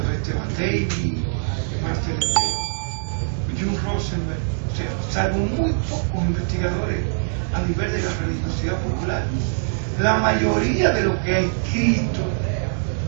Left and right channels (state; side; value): silent; left; digital silence